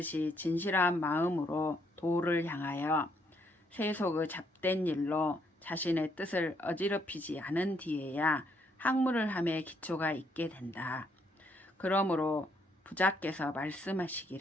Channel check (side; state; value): both; normal; correlation 0.72